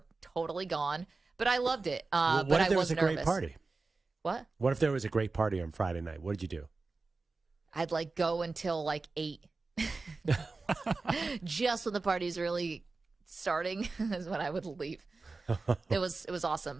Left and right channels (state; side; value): quieter; left; 3.8 dB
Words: totally gone, but I loved it. What but if there I was a nervous. great party? What? What if there was a great party on Friday night? What did you do? I'd go until 8. Just when the party's really starting is when I would leave. It was awesome,